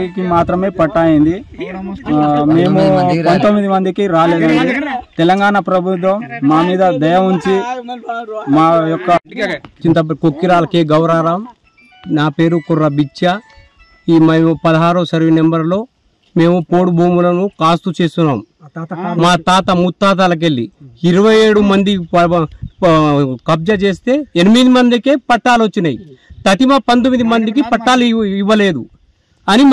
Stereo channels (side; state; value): both; identical; correlation 1.00